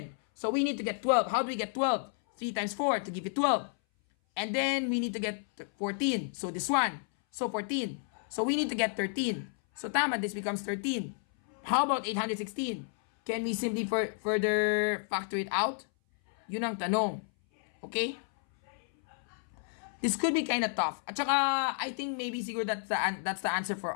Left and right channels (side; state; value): right; silent; 57 dB below the other